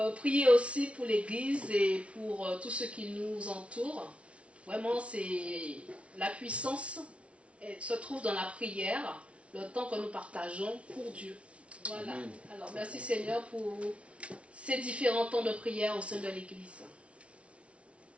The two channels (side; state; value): left; late; 0.062 ms